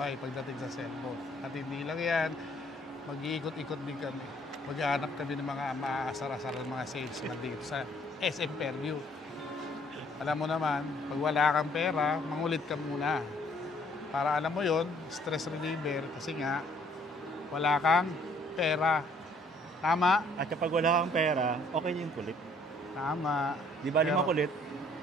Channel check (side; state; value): both; normal; correlation 0.62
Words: pagdating sa cellphone. At hindi lang yan, mag-iikot-ikot din kami. Maghahanap kami ng mga maaasar-asar ng mga salesman dito sa SM Fairview. Alam mo naman, pag wala kang pera, mangulit ka muna. Para alam mo yon, stress reliever kasi nga, wala kang pera. Tama? At kapag wala kang pera, okay yung kulit. Tama. Di ba lima kulit?